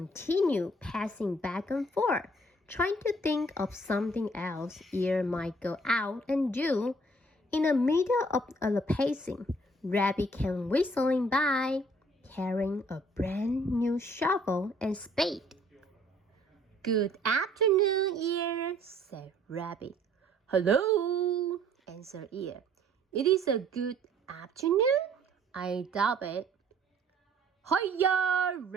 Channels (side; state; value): both; normal; correlation 0.59